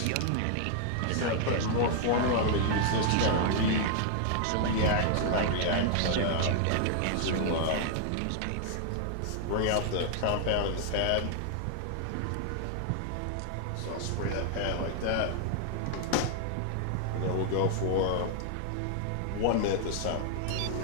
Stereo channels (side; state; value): both; different; correlation 0.00